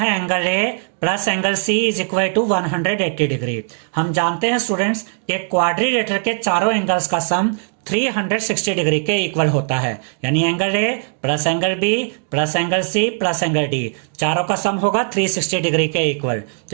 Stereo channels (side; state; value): left; silent; 62 dB below the other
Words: angle A plus angle C is equal to 180 degree. हम जानते हैं स्टूडेंट्स कि क्वाड्रिलेटरल के चारों एंगल्स का सम 360 डिग्री के इक्वल होता है, यानी angle A plus angle B plus angle C plus angle D चारों का सम होगा 360 डिग्री के इक्वल। तो